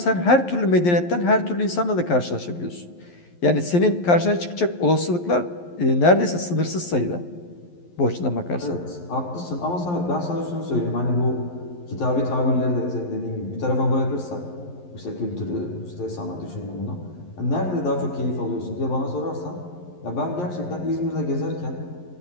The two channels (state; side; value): late; right; 11 ms